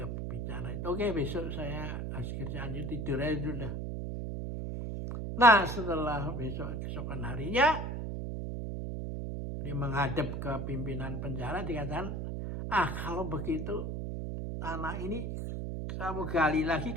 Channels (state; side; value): noise; right; hum, 3 dB below the sound